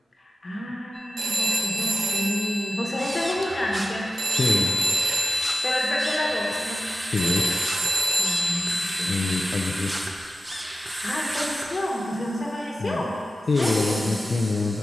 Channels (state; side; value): normal; both; correlation 0.93